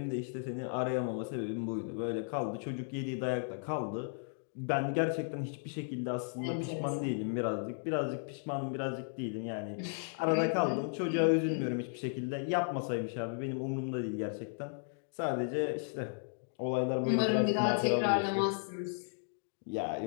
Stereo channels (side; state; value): right; silent; digital silence